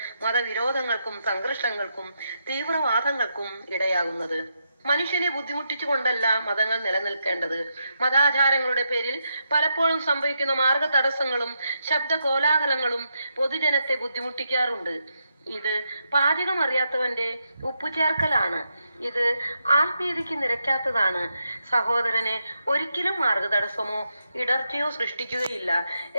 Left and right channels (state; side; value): inverted; both; correlation -0.83